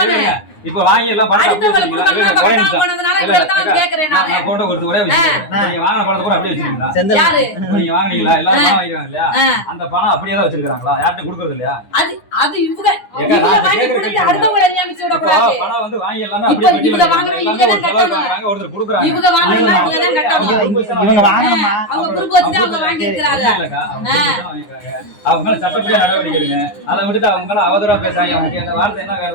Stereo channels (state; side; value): late; right; 9.7 ms